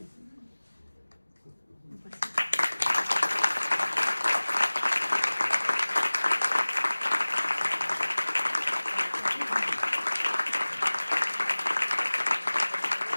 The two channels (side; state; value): both; inverted; correlation -1.00